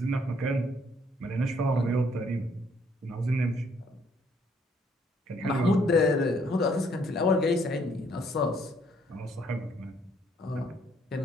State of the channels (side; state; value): both; normal; correlation 0.67